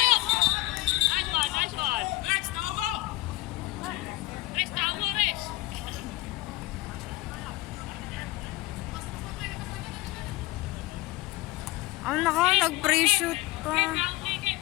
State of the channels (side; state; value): right; quieter; 19.3 dB